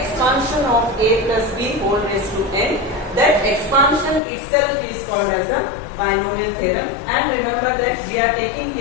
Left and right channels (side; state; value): right; drops out; at 4.2 s